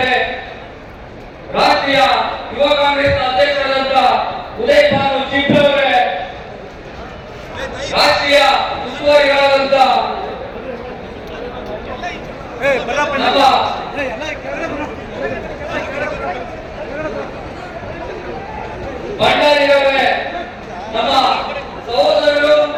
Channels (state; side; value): identical; both; correlation 1.00